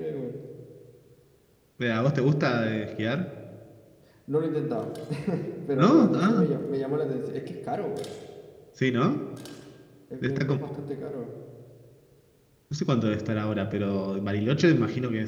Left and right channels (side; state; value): both; identical; correlation 1.00